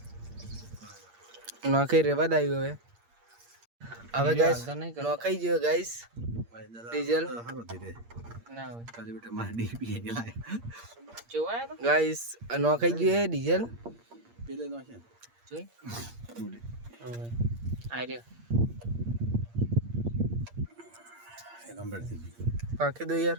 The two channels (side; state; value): left; late; 8.6 ms